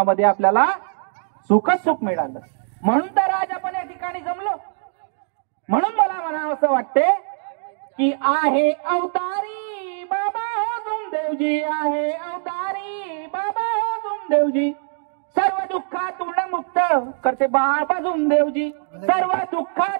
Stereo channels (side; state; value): left; silent; digital silence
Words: आपल्याला सुखच सुख मिळालं, म्हणून तर आज आपण या ठिकाणी जमलो। म्हणून मला म्हणावं असं वाटते की आहे अवतारी बाबा हो जुमदेवजी, आहे अवतारी बाबा हो जुमदेवजी, सर्व दुःखातून मुक्त करते बाबा जुमदेवजी, सर्व